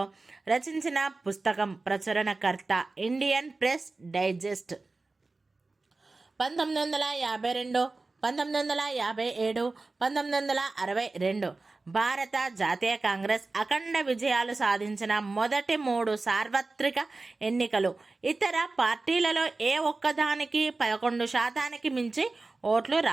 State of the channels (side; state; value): left; quieter; 3.5 dB